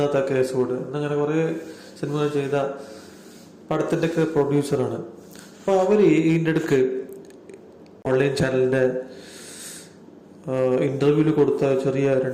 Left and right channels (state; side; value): identical; both; correlation 1.00